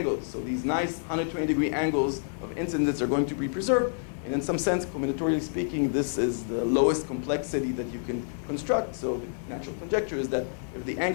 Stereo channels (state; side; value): silent; right; 59 dB below the other